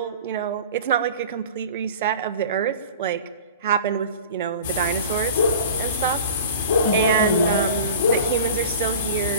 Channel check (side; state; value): both; inverted; correlation -0.38